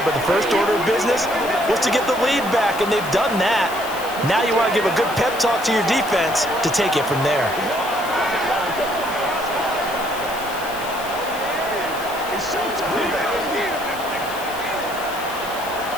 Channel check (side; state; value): left; noise; hiss, 14 dB below the sound